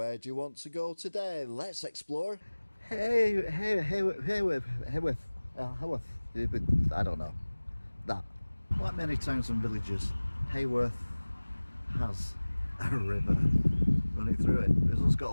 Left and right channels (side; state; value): both; inverted; correlation -1.00